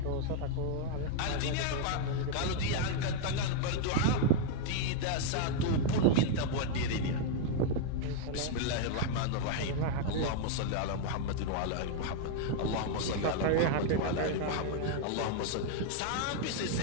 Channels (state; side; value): different; both; correlation 0.00